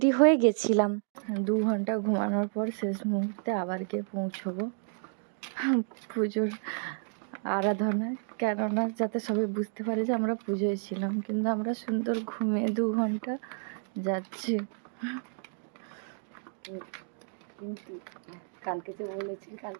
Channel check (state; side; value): silent; left; 57 dB below the other